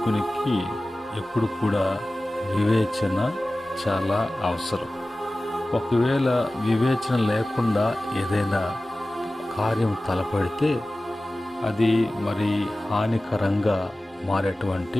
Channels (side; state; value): both; normal; correlation 0.97